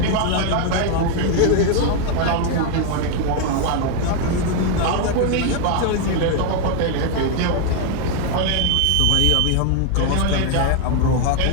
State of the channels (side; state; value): both; different; correlation 0.01